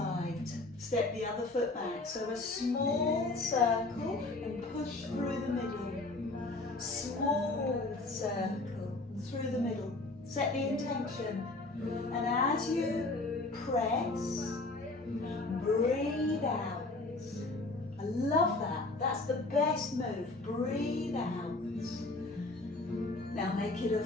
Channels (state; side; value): quieter; right; 3.1 dB